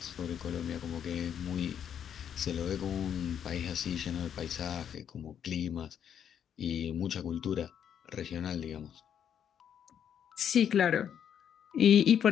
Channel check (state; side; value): quieter; right; 8.8 dB